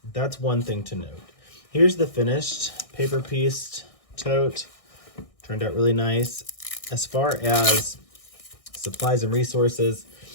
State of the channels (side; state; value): right; late; 1.6 ms